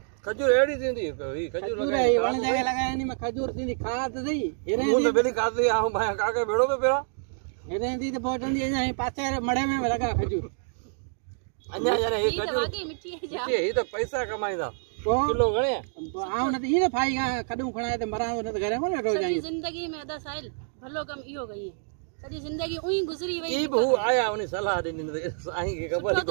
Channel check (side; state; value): left; silent; digital silence